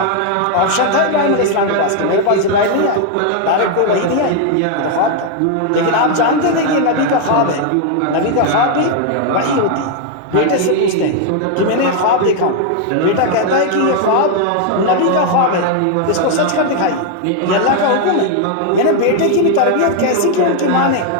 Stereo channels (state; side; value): different; both; correlation 0.00